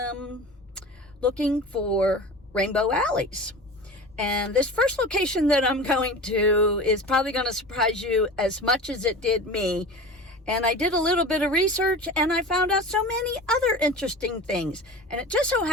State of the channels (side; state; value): both; normal; correlation 0.33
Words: looking for rainbow alleys. And this first location that I'm going to is probably going to surprise you as much as it did me. And I did a little bit of research, and I found out so many other interesting things. And it just so